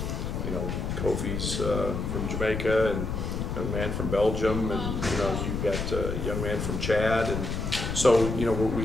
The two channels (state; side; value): noise; left; rumble, 3 dB below the sound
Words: know, Kofi's from Jamaica, and a man from Belgium, and you've got a young man from Chad, and so we